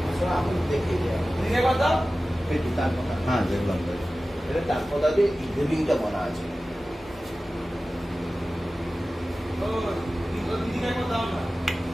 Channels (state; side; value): normal; both; correlation 0.96